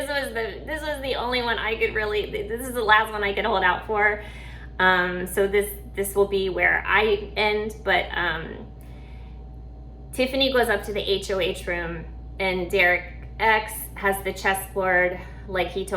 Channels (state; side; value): identical; both; correlation 1.00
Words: was the only one I could really, this is the last one I could hold out for. So this will be where I end, but Tiffany goes up to the HOH room, and Derek X has the chessboard like he